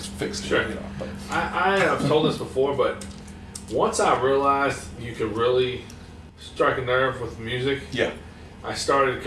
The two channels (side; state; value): both; identical; correlation 1.00